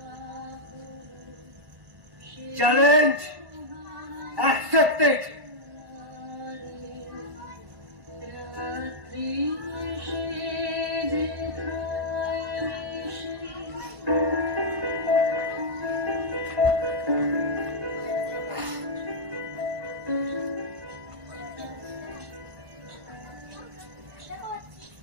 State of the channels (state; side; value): late; left; 1.5 ms